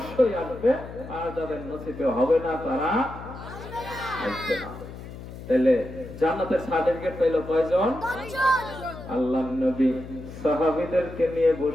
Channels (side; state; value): left; noise; hum, 12 dB below the sound